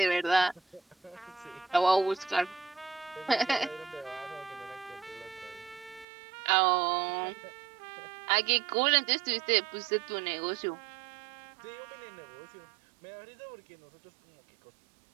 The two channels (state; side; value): drops out; left; at 6.1 s